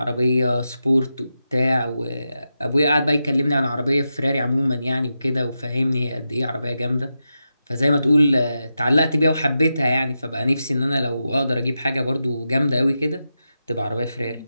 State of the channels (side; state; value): both; inverted; correlation -0.89